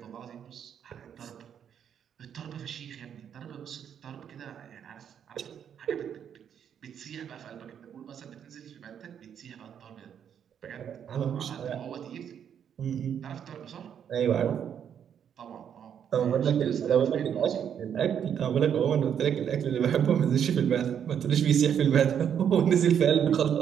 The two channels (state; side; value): quieter; left; 8.6 dB